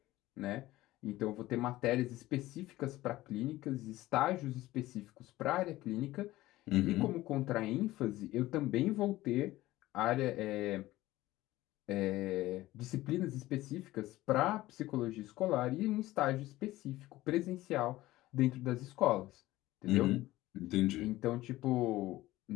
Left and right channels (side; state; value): right; quieter; 17.0 dB